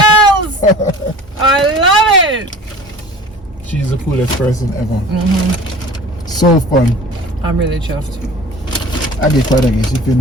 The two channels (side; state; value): both; normal; correlation 0.42